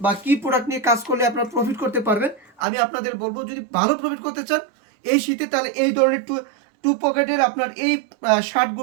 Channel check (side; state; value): left; drops out; at 2.7 s